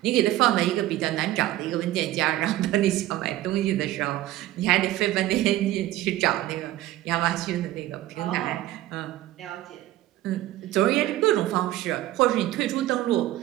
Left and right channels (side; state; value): left; quieter; 15.0 dB